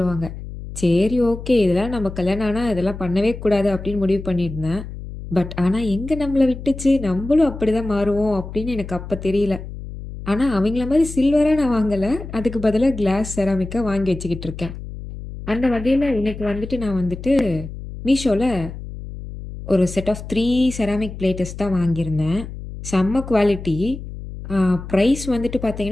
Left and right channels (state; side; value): noise; left; hum, 11 dB below the sound